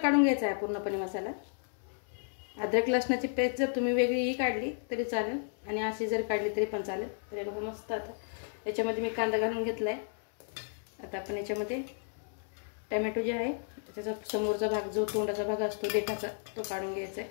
घ्यायचा आहे पूर्णपणे मसाला. अद्रक लसणाची पेस्ट जर तुम्ही वेगळीही काढली तरी चालेल आणि अशी जर काढली तरी पण चालेल. तरी बघा मस्त. आता याच्यामध्ये मी कांदा घालून घेतला आहे. आता आपण याच्यामध्ये टमॅटो जे आहे त्याचा समोरचा भाग जो तोंडाचा भाग असतो देठाचा तो काढून घ्यायचा आहे.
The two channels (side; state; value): right; silent; 56 dB below the other